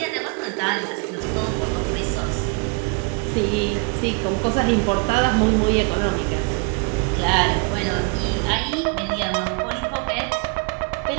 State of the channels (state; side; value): quieter; left; 33.3 dB